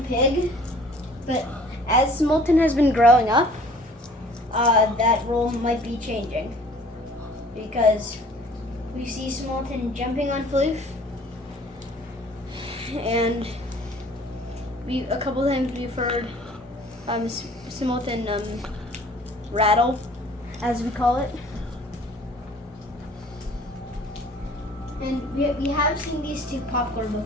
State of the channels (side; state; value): both; normal; correlation 0.52